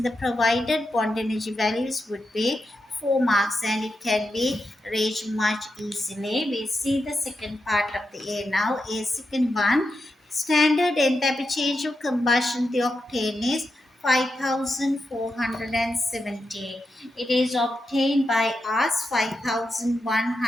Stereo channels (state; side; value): normal; both; correlation 0.87